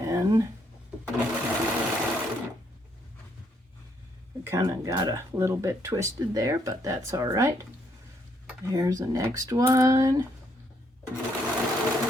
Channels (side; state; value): both; normal; correlation 0.72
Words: we kind of got a little bit twisted there, but that's all right. Here's the next one.